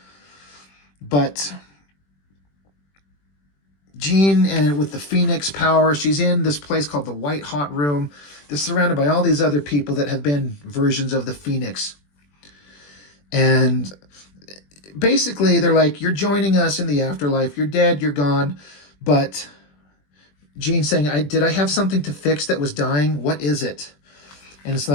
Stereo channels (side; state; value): right; late; 21 ms